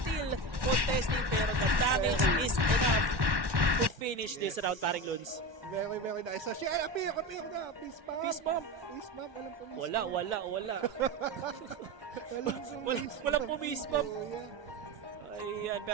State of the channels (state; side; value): late; left; 1.1 ms